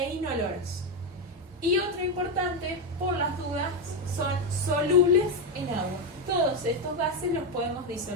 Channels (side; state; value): both; normal; correlation 0.08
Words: inoloros. Y otra importante, por las dudas, son solubles en agua. Todos estos gases los podemos